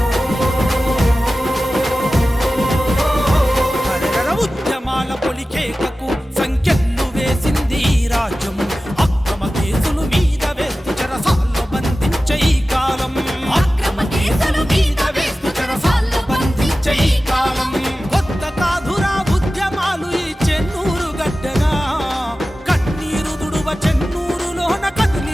సంఖ్యలు వేసింది రాజ్యం, అక్రమ కేసులు మీద వేస్తూ చెరసాల్లో బంధించే ఈ కాలం, అక్రమ కేసులు మీద వేస్తూ చెరసాల్లో బంధించే ఈ కాలం. కొత్త కాదురా ఉద్యమాలు ఈ చెన్నూరు గడ్డగా, కన్నీరు దుడువ చెన్నూరులోన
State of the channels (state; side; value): normal; both; correlation 0.95